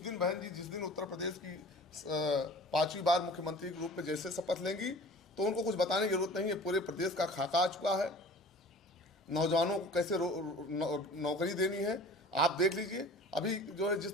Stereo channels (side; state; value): both; normal; correlation 0.43